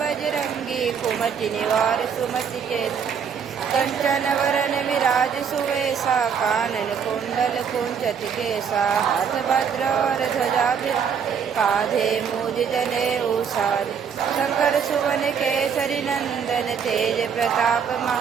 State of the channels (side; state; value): left; quieter; 7.0 dB